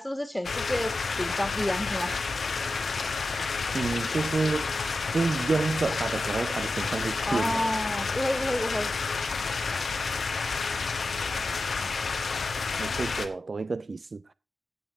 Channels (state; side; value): normal; both; correlation 0.91